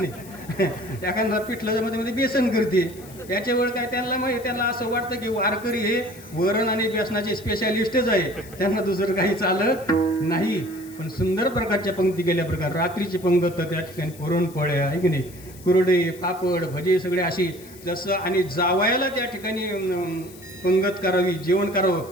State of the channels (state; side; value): noise; left; hiss, 21 dB below the sound